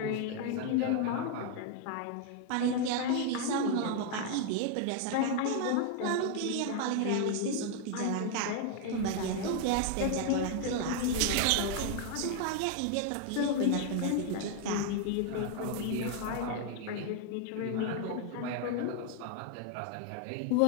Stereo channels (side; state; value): both; different; correlation 0.00